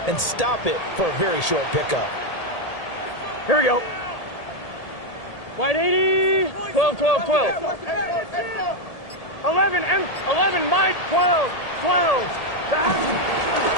and stop it for a very short pickup. Here we go. Wide 80. 12, 12, 12. 11, Mike. 12, 12.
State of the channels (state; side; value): late; right; 1.8 ms